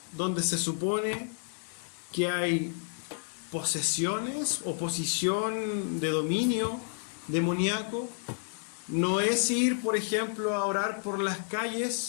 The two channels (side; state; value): right; silent; 57 dB below the other